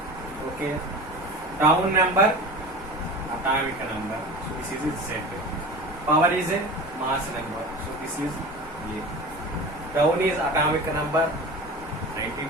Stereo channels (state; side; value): normal; both; correlation 0.34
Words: Okay. Down number, atomic number. So this is Z. Power is a mass number. So this is A. Down is atomic number